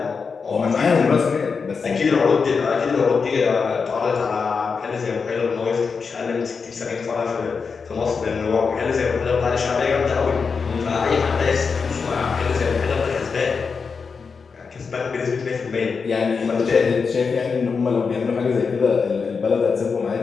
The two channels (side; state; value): right; quieter; 5.3 dB